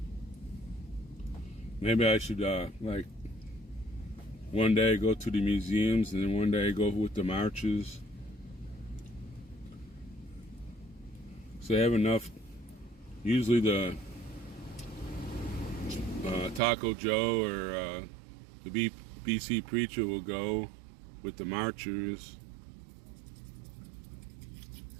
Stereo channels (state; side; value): drops out; left; at 16.6 s